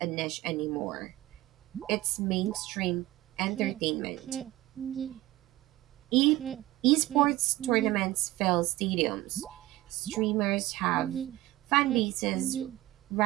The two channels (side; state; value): left; quieter; 17.2 dB